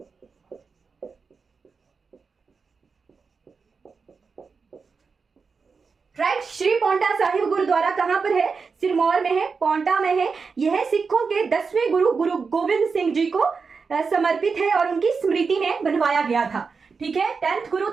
राइट, श्री पौंटा साहिब गुरुद्वारा कहां पर है? सिरमौर में है, पौंटा में है। यह सिखों के 10वें गुरु गुरु गोविंद सिंह जी को समर्पित है और उनकी स्मृति में बनवाया गया था। ठीक है, 10th गुरु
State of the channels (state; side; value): quieter; left; 5.1 dB